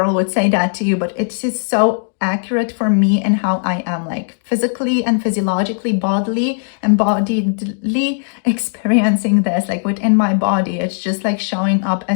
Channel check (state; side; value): silent; right; 67 dB below the other